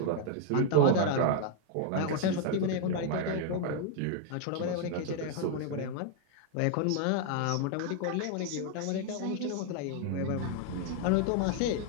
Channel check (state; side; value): different; both; correlation 0.00